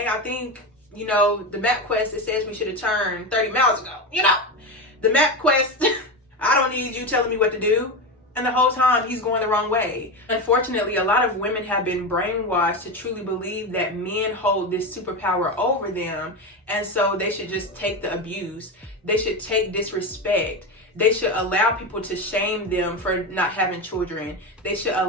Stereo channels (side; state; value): both; normal; correlation 0.18